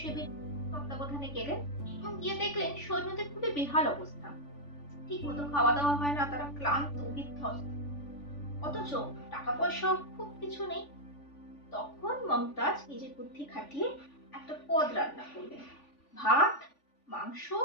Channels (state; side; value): late; right; 3.5 ms